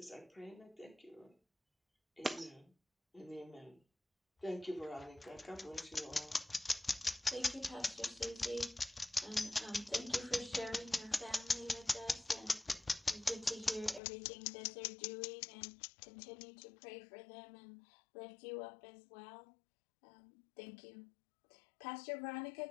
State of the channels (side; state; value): right; drops out; at 14.0 s